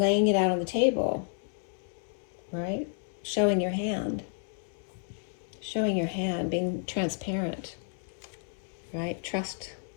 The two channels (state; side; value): silent; right; digital silence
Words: it out on the table, right? Showing your hand, being transparent, right? Trust,